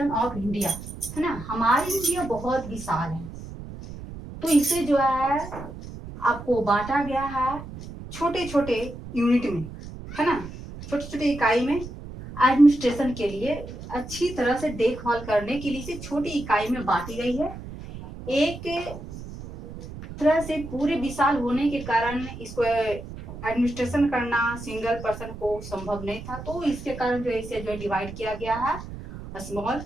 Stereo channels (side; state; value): right; noise; rumble, 12 dB below the sound